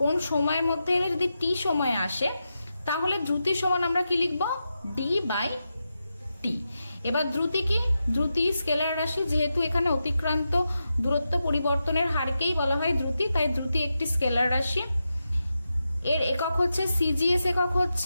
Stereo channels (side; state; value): both; inverted; correlation -0.89